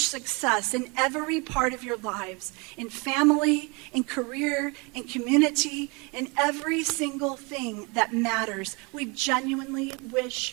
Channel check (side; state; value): left; quieter; 29.2 dB